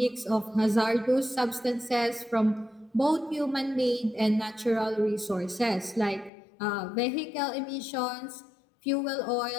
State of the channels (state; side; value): drops out; right; at 6.3 s